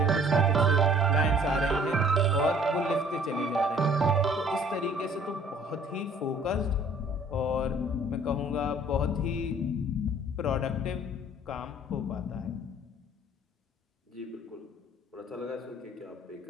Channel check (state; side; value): normal; both; correlation 0.55